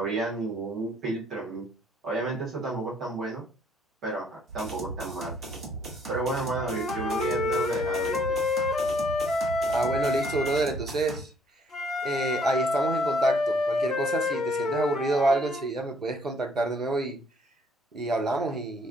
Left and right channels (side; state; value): both; normal; correlation 0.64